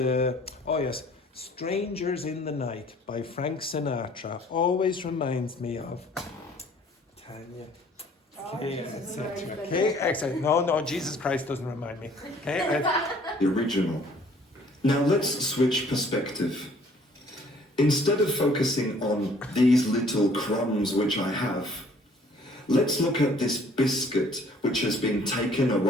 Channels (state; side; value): normal; both; correlation 0.57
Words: oh yes, "Strangers in the Night" by Frank Sinatra always reminds me of Tanya. Okay, etc. Okay, excellent. No, Jesus Christ doesn't remind me. Okay. the original. Now let's switch perspective. Instead of focusing on these little crumbs which I have, let's look at this biscuit which has been taken